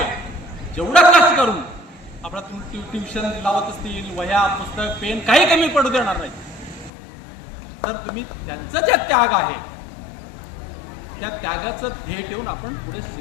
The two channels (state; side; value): drops out; right; at 6.9 s